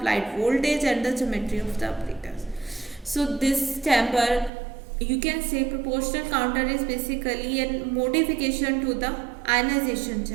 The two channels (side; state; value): left; drops out; at 4.5 s